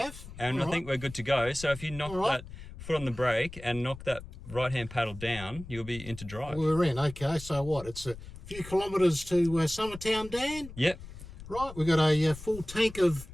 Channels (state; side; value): noise; left; rumble, 14 dB below the sound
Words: And All I think we're good to go. So if you knock that foot on the brake and knock that right-hand paddle down, you'll be into drive. We're in. Okay, so what? It's a few kilometres to Summertown, Dan? Yep. Right, we've got a full tank of